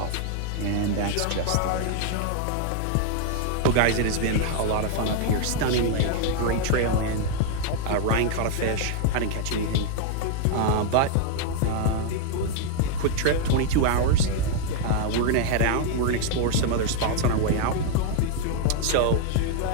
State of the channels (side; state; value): both; different; correlation 0.00